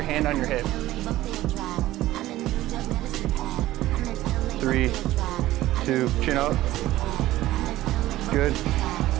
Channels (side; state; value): left; quieter; 15.6 dB